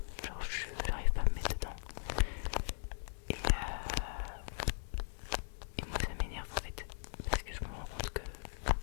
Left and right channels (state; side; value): silent; right; digital silence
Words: genre j'arrive pas à me mettre dedans. Et moi ça m'énerve en fait, parce que je me rends compte que